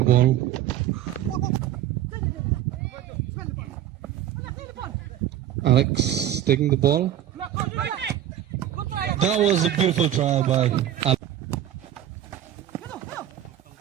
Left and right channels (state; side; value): quieter; left; 11.5 dB